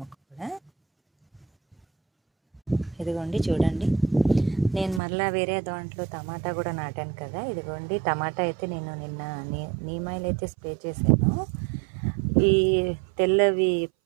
మొక్క కూడా. ఇదిగోండి చూడండి, నేను మళ్ళీ వేరే దాంట్లో టమాటా కూడా నాటాను కదా. ఇదిగోండి టమాటా అయితే నేను నిన్న నీమాయిల్ అయితే స్ప్రే చేశాను. ఈ తెల్లవి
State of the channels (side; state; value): left; drops out; at 5.0 s